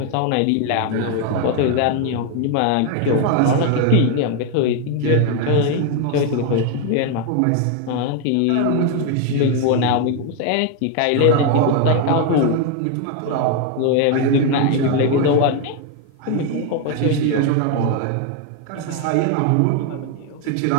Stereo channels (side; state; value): both; different; correlation 0.01